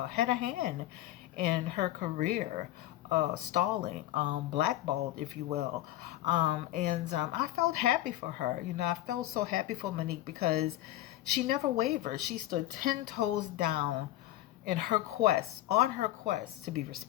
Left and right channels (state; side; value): quieter; right; 14.6 dB